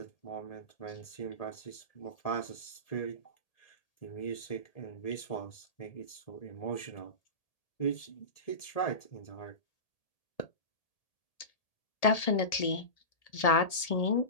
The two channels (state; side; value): late; right; 1.8 ms